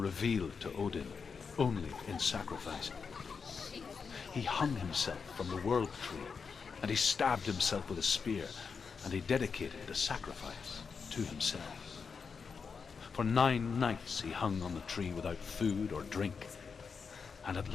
to Odin only in sacrifice. He hung himself from the world tree, and he stabbed himself with a spear, and he dedicated the sacrifice to himself. For 9 nights he hung on the tree without food or drink, and at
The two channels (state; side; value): quieter; right; 5.6 dB